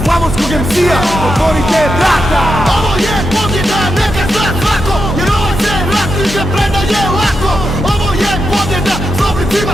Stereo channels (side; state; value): both; normal; correlation 0.85